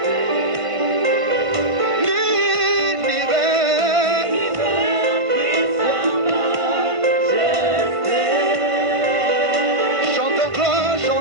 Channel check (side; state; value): left; late; 1.5 ms